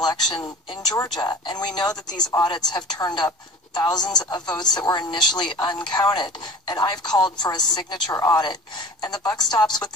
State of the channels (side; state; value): both; normal; correlation 0.39